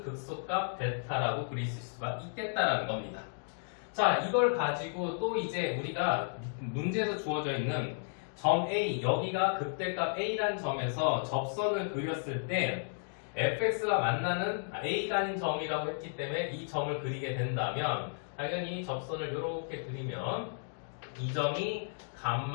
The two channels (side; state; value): right; silent; digital silence